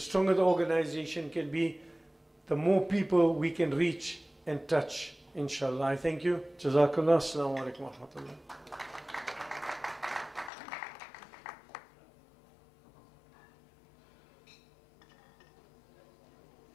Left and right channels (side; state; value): right; drops out; at 10.5 s